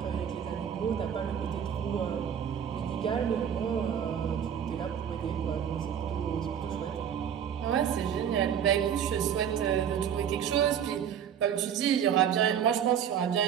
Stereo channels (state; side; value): quieter; left; 8.7 dB